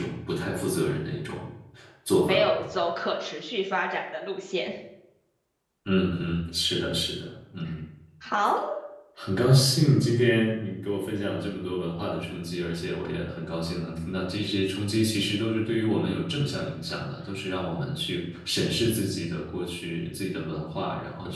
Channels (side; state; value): both; identical; correlation 1.00